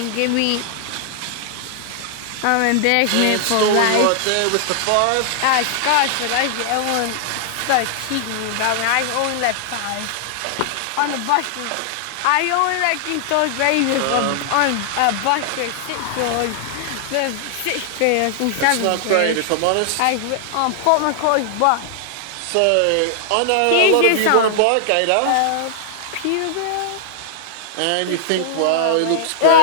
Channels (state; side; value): different; both; correlation -0.01